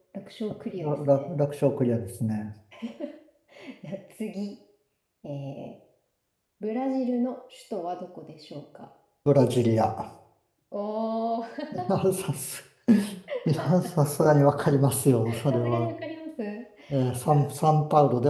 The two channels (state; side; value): identical; both; correlation 1.00